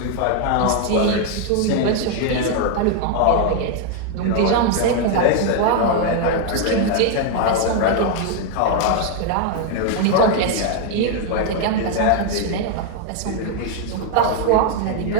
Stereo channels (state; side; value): different; both; correlation 0.00